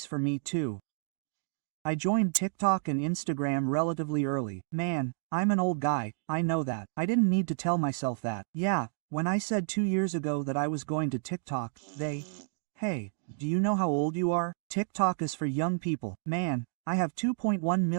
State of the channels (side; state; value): left; silent; digital silence